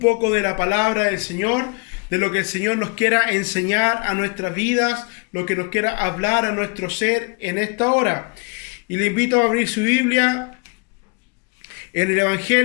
de la palabra del Señor, de lo que el Señor nos quiera enseñar a nuestras vidas, lo que nos quiera hablar a nuestro ser en esta hora. Y le invito a abrir su Biblia en el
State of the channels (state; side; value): quieter; right; 33.4 dB